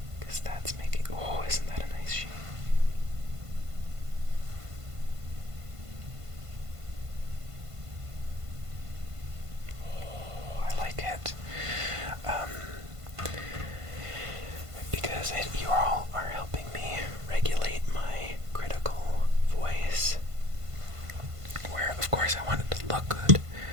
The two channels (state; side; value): late; left; 1.5 ms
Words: because that's making, oh, isn't that a nice sheet? Oh, I like it. Because you all are helping me regulate my critical voice, where of course I want it to look good,